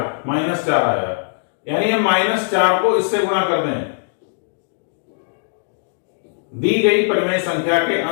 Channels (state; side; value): silent; right; digital silence